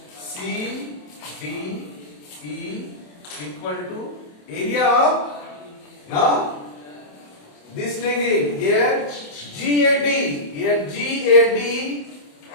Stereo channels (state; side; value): late; right; 27 ms